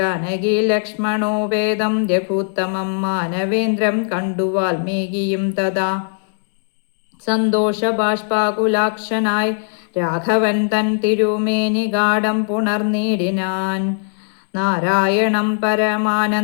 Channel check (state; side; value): silent; right; digital silence